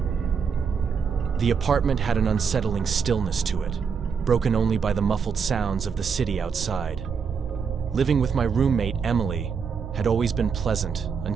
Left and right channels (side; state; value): left; quieter; 6.2 dB